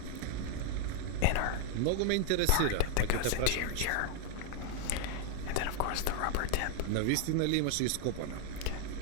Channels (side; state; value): both; different; correlation 0.01